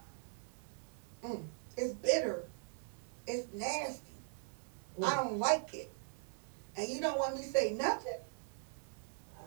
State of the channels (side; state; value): left; silent; digital silence